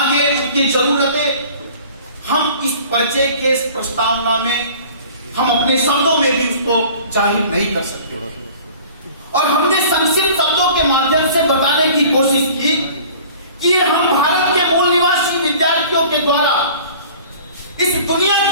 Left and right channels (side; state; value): both; inverted; correlation -0.46